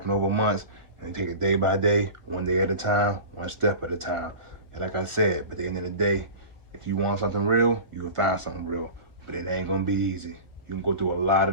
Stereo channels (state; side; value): late; left; 1.4 ms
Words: over months. And you take it day by day, one day at a time, one step at a time. And like I said, but at the end of the day, if you want something real, you can find something real. But it ain't gonna be easy. You can go through a lot